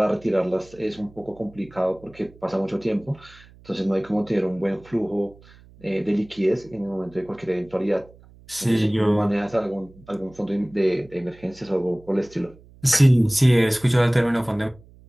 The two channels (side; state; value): right; noise; hum, 24 dB below the sound